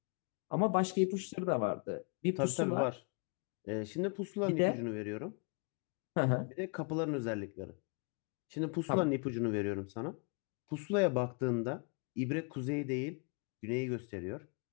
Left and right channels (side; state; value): right; quieter; 37.7 dB